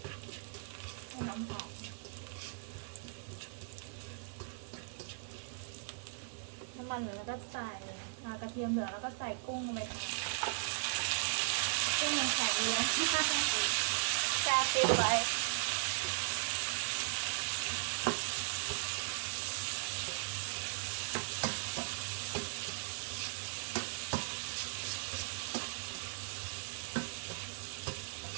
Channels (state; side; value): silent; left; 52 dB below the other